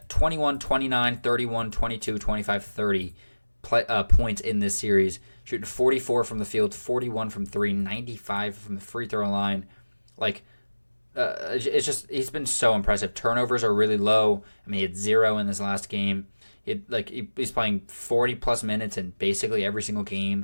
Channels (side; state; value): both; inverted; correlation -1.00